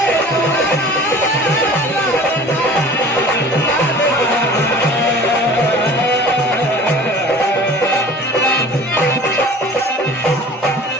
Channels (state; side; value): normal; both; correlation 0.44